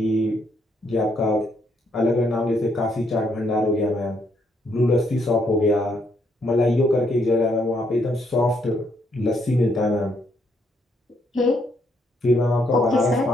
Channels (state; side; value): normal; both; correlation 0.73